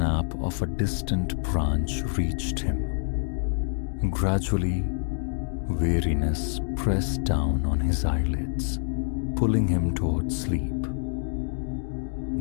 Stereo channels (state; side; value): silent; right; digital silence